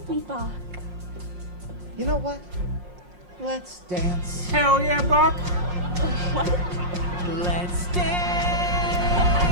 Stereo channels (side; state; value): left; late; 5.6 ms